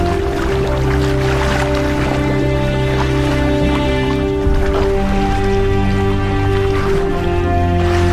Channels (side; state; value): both; identical; correlation 1.00